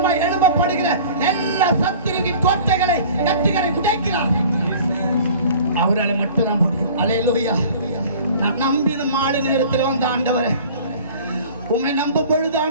எழும்பப்படுகிற எல்லா சத்துருவின் கோட்டைகளை கட்டுகளை உடைக்கிறார். அவரால் மட்டும்தான் முடியும். அல்லேலூயா. நான் நம்பின மாலை நேரத்தில் வந்த ஆண்டவரே, உம்மை நம்ப பொழுது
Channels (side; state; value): both; inverted; correlation -0.46